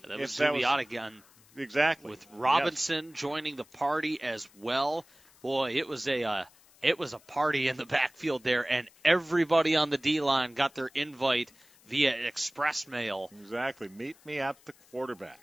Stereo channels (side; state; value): left; noise; hiss, 28 dB below the sound